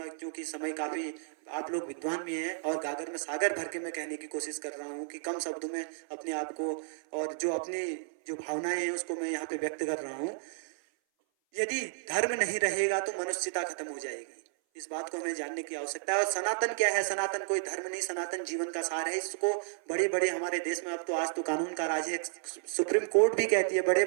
क्योंकि समय काफी, आप लोग विद्वान भी हैं और गागर में सागर भर के मैं कहने की कोशिश कर रहा हूँ कि कम शब्दों में अपने आप को और जो अपनी जो भावनाएं हैं उसको मैं यहाँ पे व्यक्त कर रहा हूँ। यदि धर्म नहीं रहेगा तो मनुष्यता खत्म हो जाएगी। इस बात को हमें जानने की आवश्यकता है। और सनातन क्या है? सनातन कोई धर्म नहीं, सनातन जीवन का सार है। इसको बड़े बड़े हमारे देश में अब तो आज तो कानून का राज है, सुप्रीम कोर्ट भी कहती है, बड़े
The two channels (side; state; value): left; silent; 56 dB below the other